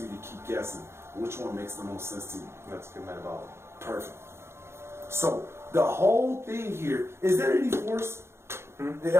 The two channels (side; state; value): left; late; 0.12 ms